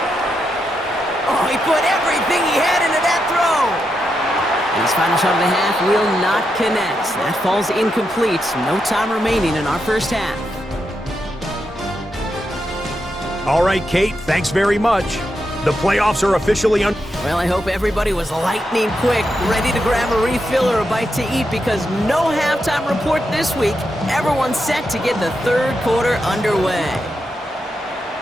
Oh, he put everything he had into that throw. And his final shot of the half will not connect. That falls incomplete. No time remaining in our first half. All right, Kate, thanks very much. The playoffs are officially on. Well, I hope everybody was lightning quick, ready to grab a refill or a bite to eat, because no halftime report this week. Everyone's set to get the 3rd quarter underway.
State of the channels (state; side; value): normal; both; correlation 0.85